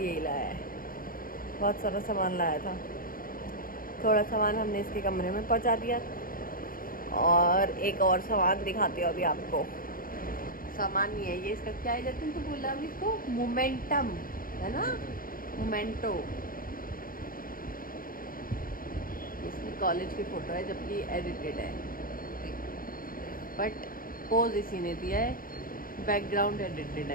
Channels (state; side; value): late; right; 0.41 ms